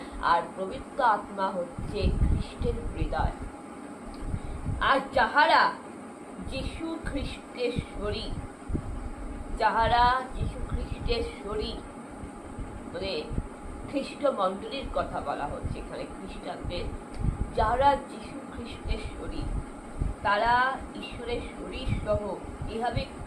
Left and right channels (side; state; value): both; identical; correlation 1.00